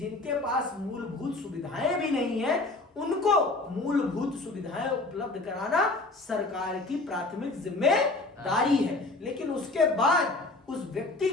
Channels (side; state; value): right; quieter; 3.1 dB